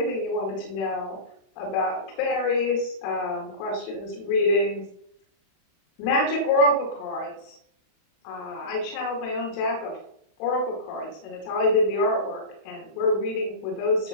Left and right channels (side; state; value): right; late; 31 ms